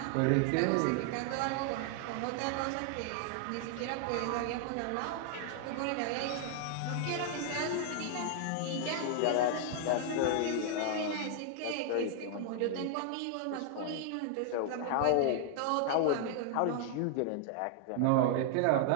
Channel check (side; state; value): both; different; correlation 0.00